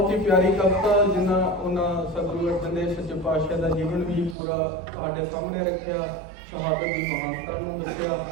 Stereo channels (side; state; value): left; drops out; at 4.4 s